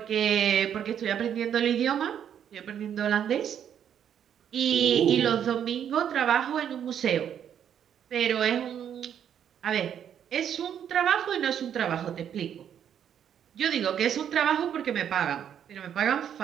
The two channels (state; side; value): quieter; left; 9.1 dB